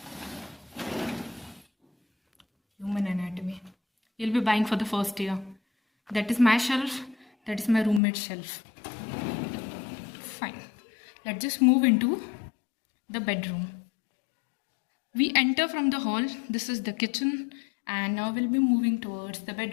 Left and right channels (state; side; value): drops out; right; at 8.0 s